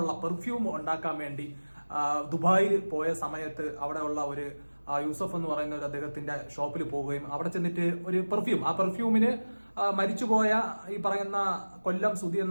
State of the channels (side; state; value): both; inverted; correlation -1.00